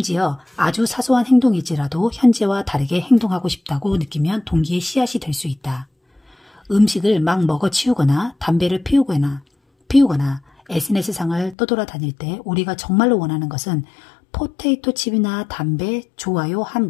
아주 사소한 행동일지라도 현재와 다르게 행동하고 싶다고 느끼면 동기의 씨앗이 될 수 있다. 음식을 막 먹어치우거나 담배를 피우거나 SNS상을 떠돌아다닐 때 우리가 정말로 원하는 것은 포테이토 칩이나 담배, 좋아요 한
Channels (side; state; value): right; drops out; at 11.6 s